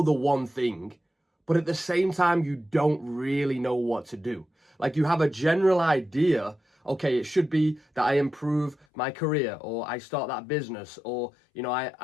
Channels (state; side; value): drops out; right; at 8.8 s